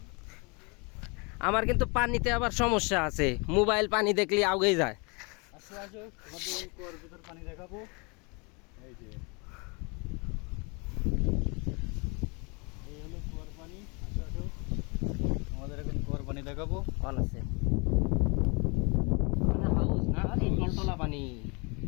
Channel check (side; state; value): right; quieter; 31.0 dB